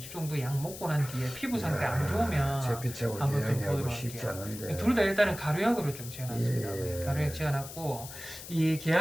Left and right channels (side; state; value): left; noise; hiss, 12 dB below the sound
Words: 정도 약 먹고 난 뒤에 피부 상태 안 좋으면 잿빛하고 한번 좀 개양이하고 보도록 쉽지 할게요. 않은데. 둘 다 일단은 가루약으로 좀 지어놨습니다. 예. 가루약 지어놨고 이